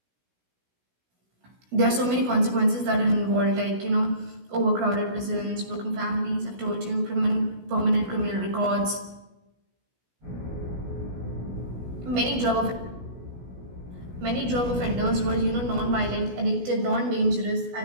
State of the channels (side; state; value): left; late; 16 ms